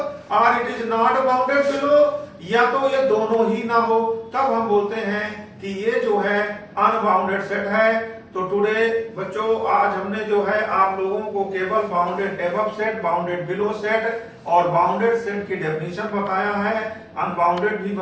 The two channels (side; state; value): both; identical; correlation 1.00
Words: or it is not bounded below, या तो ये दोनों ही ना हो, तब हम बोलते हैं कि ये जो है अनबाउंडेड सेट है। तो टुडे बच्चों आज हमने जो है आप लोगों को केवल bounded above set, bounded below set और बाउंडेड सेट की डेफिनेशन बताया है। अनबाउंडेड भी